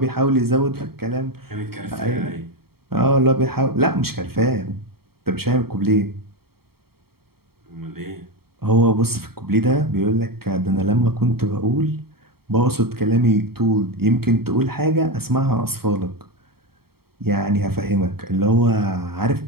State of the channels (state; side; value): late; left; 0.95 ms